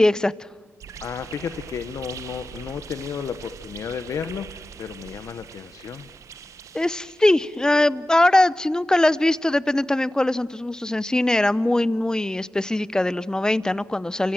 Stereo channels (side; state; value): both; normal; correlation 0.95